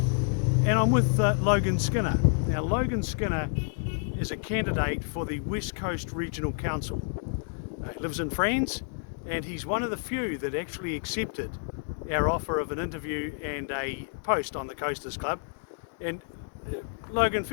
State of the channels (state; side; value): silent; right; 59 dB below the other